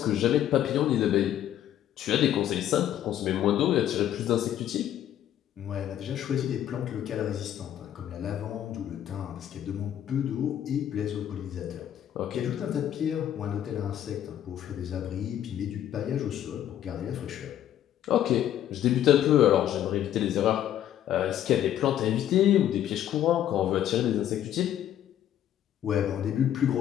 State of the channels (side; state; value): right; quieter; 11.2 dB